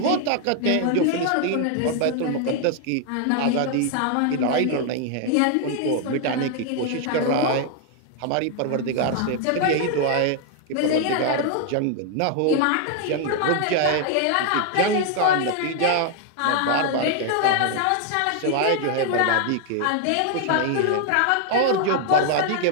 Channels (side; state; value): both; different; correlation 0.00